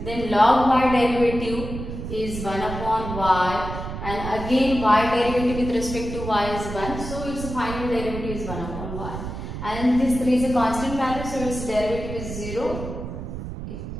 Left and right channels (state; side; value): noise; right; rumble, 7 dB below the sound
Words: Then log y derivative is 1 upon y, and again y derivative with respect to y is 1, so its final derivative is 1 upon y. And this 3 is a constant value, so its derivative is 0.